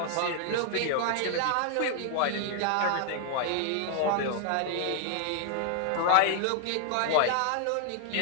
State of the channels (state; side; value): different; both; correlation 0.00